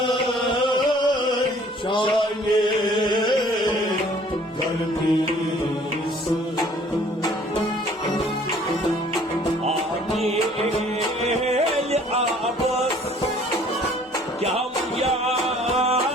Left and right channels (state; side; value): normal; both; correlation 0.56